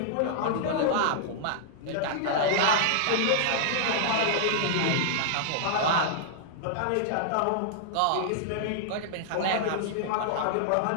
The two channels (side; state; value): both; different; correlation -0.01